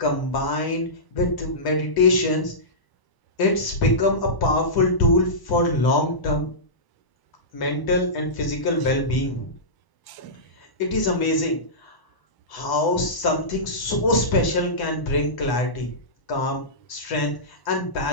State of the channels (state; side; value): late; right; 1.0 ms